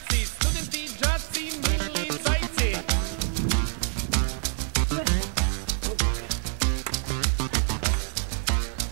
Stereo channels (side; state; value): left; silent; 60 dB below the other